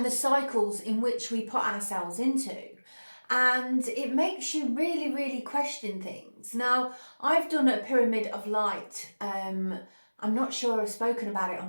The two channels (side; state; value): both; inverted; correlation -1.00